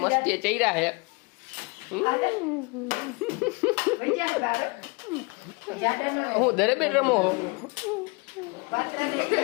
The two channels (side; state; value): right; quieter; 29.0 dB